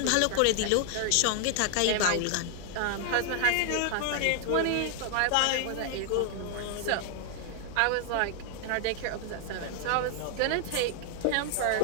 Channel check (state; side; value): different; both; correlation 0.00